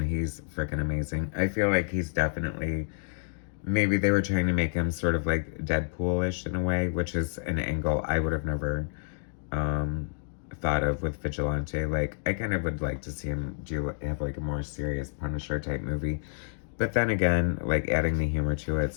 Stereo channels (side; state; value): right; silent; digital silence